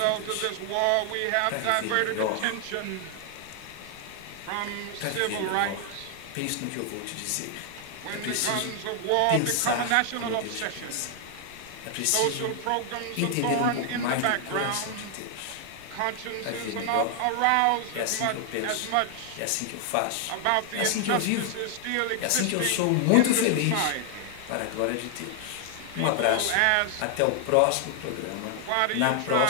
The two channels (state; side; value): different; both; correlation 0.00